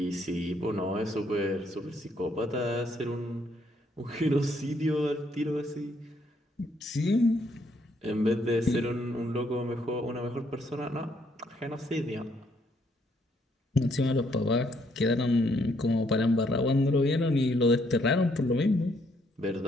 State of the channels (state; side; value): normal; both; correlation 0.71